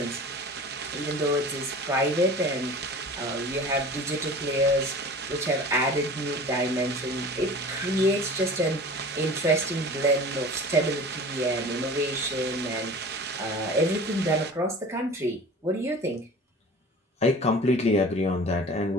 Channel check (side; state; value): both; normal; correlation 0.40